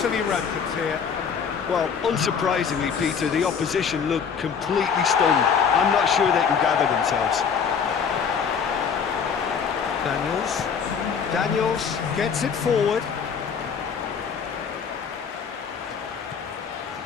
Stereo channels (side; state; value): right; quieter; 6.6 dB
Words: rampant here. Well, unsurprisingly, Peter, the opposition looked completely stunned. I'm not sure they can gather themselves. Daniels gets it forward.